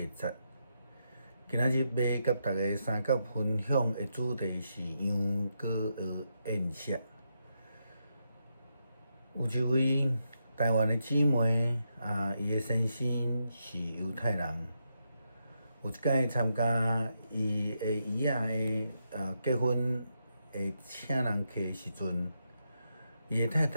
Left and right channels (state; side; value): inverted; both; correlation -0.82